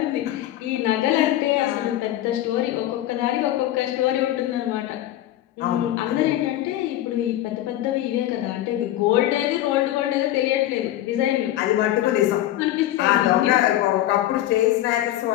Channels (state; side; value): quieter; right; 13.8 dB